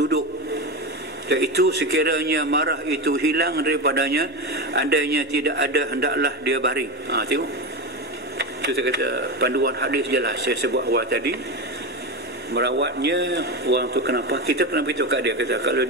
Iaitu sekiranya marah itu hilang daripadanya, andainya tidak ada, hendaklah dia baring. Tengok. Itu saya kata panduan hadis jelas. Saya sebut awal tadi, merawatnya orang tu kenapa? Kita kena beritahu kat dia, kata kalau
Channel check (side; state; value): both; normal; correlation 0.18